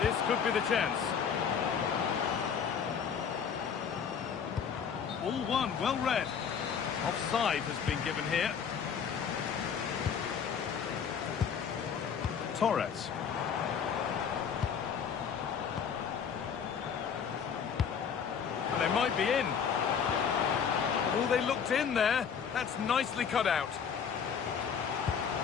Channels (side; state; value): right; quieter; 7.1 dB